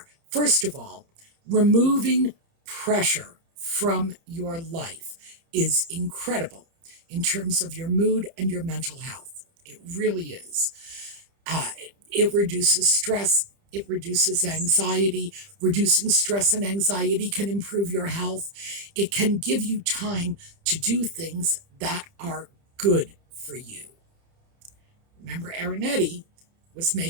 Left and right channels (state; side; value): late; left; 30 ms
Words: first of all, removing pressure from your life is incredible in terms of your mood and your mental health. It really is. It reduces stress. It reduces anxiety. Reducing stress and anxiety can improve your health. It can give you time to do things that are good for you. Remember, Arinetti was